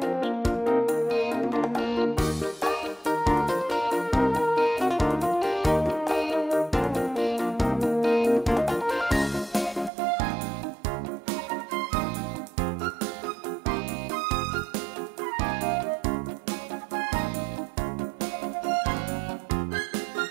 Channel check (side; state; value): left; drops out; at 9.9 s